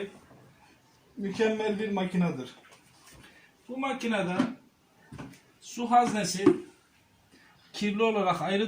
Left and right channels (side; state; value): both; identical; correlation 1.00